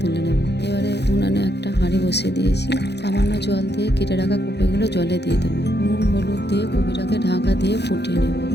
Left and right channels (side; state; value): right; late; 0.49 ms